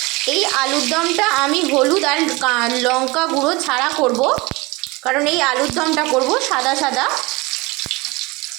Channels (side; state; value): left; quieter; 24.0 dB